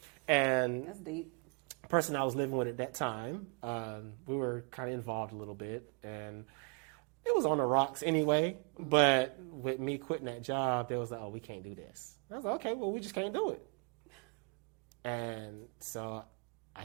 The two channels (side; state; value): left; quieter; 37.9 dB